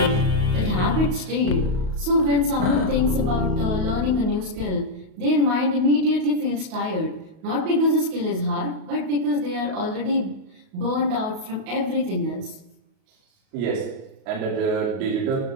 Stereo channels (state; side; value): late; left; 38 ms